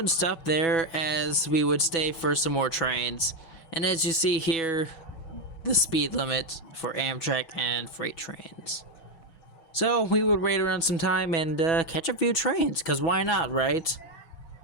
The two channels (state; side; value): late; right; 6.1 ms